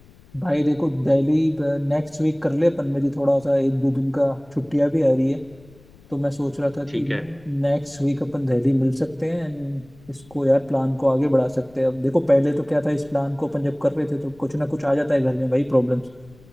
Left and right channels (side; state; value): left; noise; rumble, 26 dB below the sound